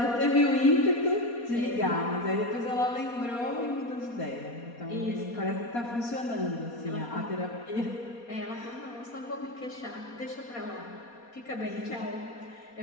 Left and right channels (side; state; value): right; late; 4.2 ms